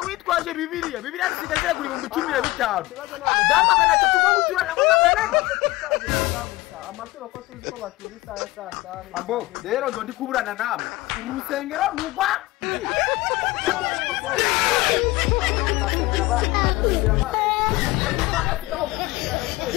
witwaje bibiliya zisigaze kuri 15 dama kana tatuko guturana ngo magana amasura ko tuzi ko batura isaha saa abo rero ndo ndi kuburana namwe urusengero rugwa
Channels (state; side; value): quieter; right; 19.6 dB